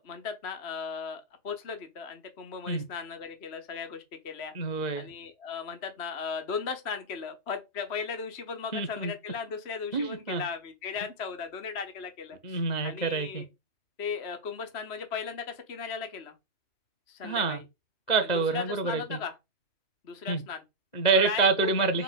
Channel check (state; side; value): late; right; 3.0 ms